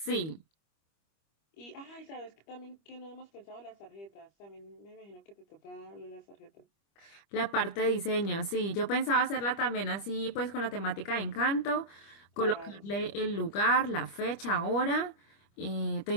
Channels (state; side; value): late; right; 25 ms